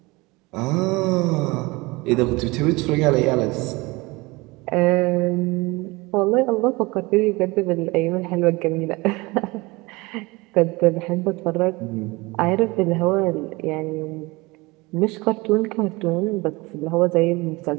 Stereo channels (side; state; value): left; quieter; 23.5 dB